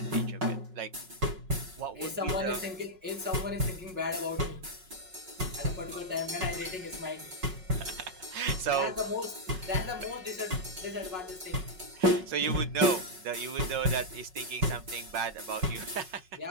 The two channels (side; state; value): left; late; 5.4 ms